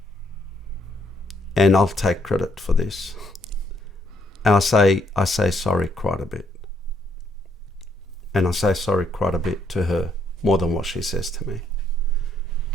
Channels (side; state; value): both; normal; correlation 0.72